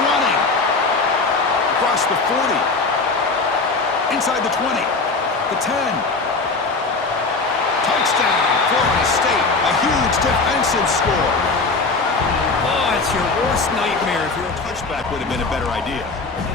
running. Across the 40. Inside the 20. The 10. Touchdown, Florida State. A huge defensive score. Oh, it's your worst nightmare. If you're a Touchback would have been a better idea.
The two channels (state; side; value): quieter; right; 3.9 dB